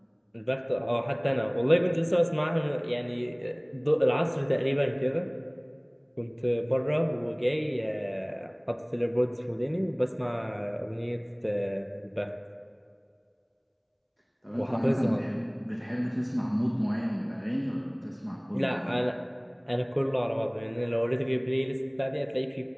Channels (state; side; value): identical; both; correlation 1.00